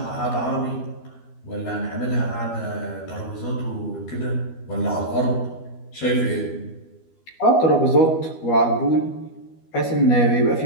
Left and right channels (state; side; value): late; right; 12 ms